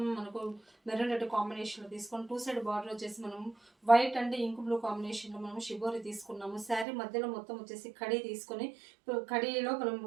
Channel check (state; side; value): drops out; left; at 6.9 s